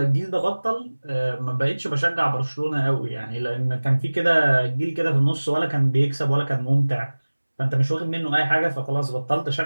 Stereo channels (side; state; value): both; inverted; correlation -1.00